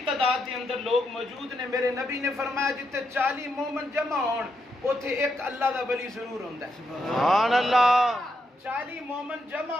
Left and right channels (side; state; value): both; normal; correlation 0.81